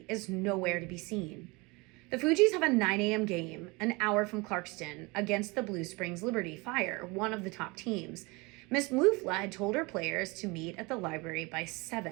is nowhere to be seen. The Fugees have a 9 a.m. game, an hour from Clarkston, against the Blue Springs Liberty Fire, one of the top teams. Miss Mufla had told her players to meet at the library by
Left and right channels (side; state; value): left; quieter; 25.9 dB